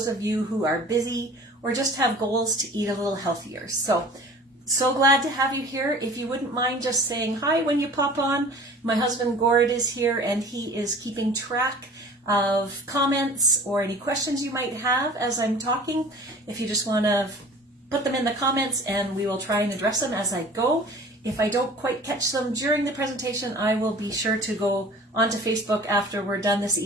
of you who are busy or just have goals to eat a little healthier. So glad to have you here. If you wouldn't mind just saying hi when you pop on. My husband Gord is here and he is keeping track of comments or any questions you might have as I'm talking. If you just want to put them in the comments and we will try and address them as I go. If I don't quite catch them during the presentation, I will be sure to go onto Facebook after we're done this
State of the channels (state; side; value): normal; both; correlation 0.44